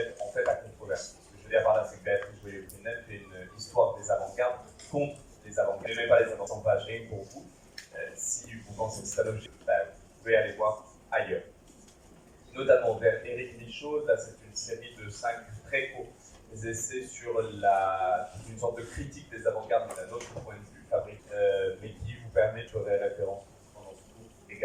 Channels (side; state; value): both; identical; correlation 1.00